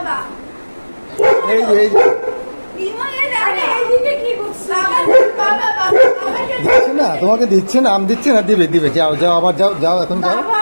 এই যে এই যে ইমো এই আরে দেখো, এইদিকে কি করছো? বাবা দেবে, বাবা বাবা বাবাকে দেবে। দিচ্ছে না, তোমাকে দিচ্ছে না, আম দিচ্ছে না, দিবে দিবে, যাও যাও, আবার যাও যাও, এখন যাও। বাবা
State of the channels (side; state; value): both; inverted; correlation -1.00